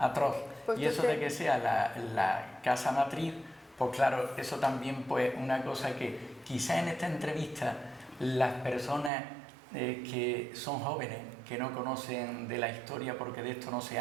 Pues y eso de que sea la casa matriz, pues claro, eso también pues una cosa que quizá en esta entrevista las personas que son jóvenes, que no conocen de la historia porque de esto no se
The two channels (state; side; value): drops out; left; at 9.1 s